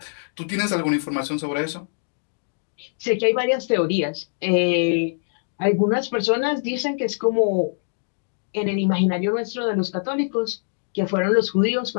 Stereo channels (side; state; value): right; silent; digital silence